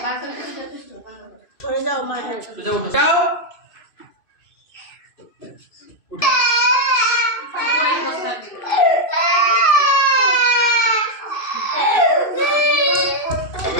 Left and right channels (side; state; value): right; late; 2.5 ms